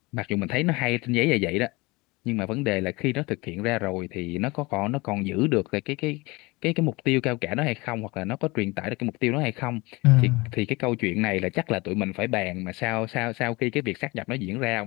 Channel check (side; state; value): right; quieter; 23.9 dB